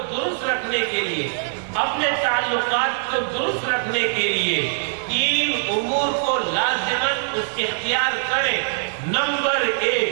درست رکھنے کے لیے، اپنے تعلقات کو درست رکھنے کے لیے 3 امور کو لازماً اختیار کریں۔ نمبر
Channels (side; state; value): left; silent; 61 dB below the other